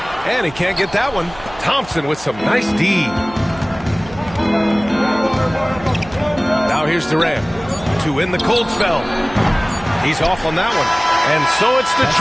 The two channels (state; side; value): noise; right; hum, 18 dB below the sound